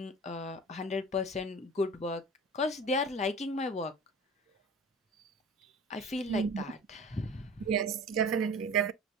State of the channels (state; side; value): normal; both; correlation 0.38